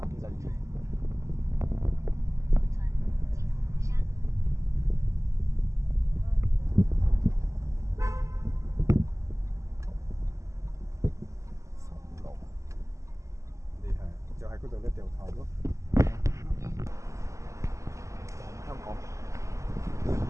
幾得意。度嘅掉頭咯。香港，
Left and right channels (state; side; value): late; left; 0.15 ms